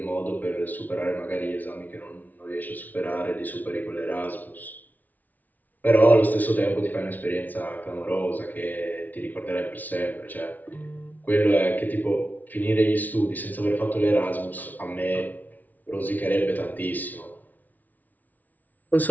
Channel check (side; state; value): right; late; 0.079 ms